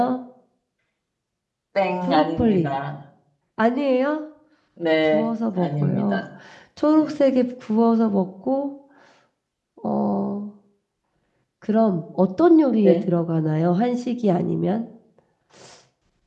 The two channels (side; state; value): both; identical; correlation 1.00